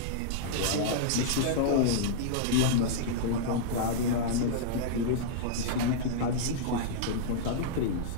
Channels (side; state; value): both; different; correlation -0.02